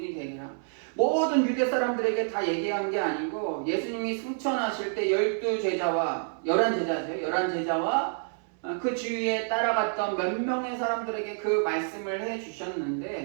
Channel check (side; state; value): left; silent; 59 dB below the other